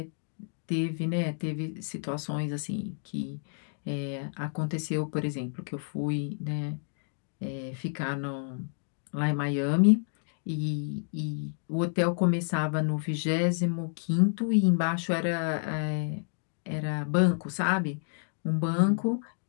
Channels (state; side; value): silent; right; digital silence